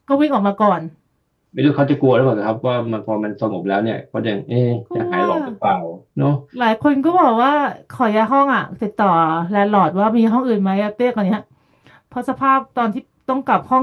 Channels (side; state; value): both; identical; correlation 1.00